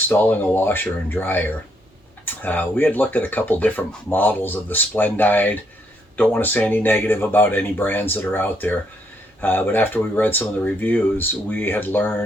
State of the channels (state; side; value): normal; both; correlation 0.73